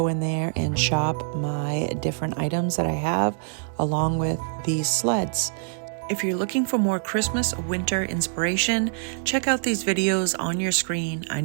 in there and shop my different items that I have along with these sleds. If you're looking for more Christmas or winter inspiration, check out these videos on your screen. I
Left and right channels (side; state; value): left; silent; digital silence